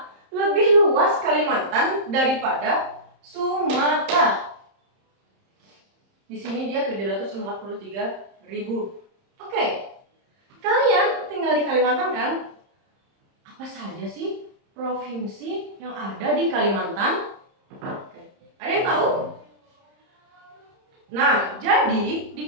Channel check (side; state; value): left; late; 30 ms